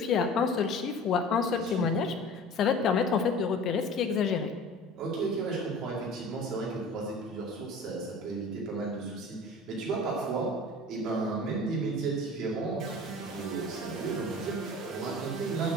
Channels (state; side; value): normal; both; correlation 0.40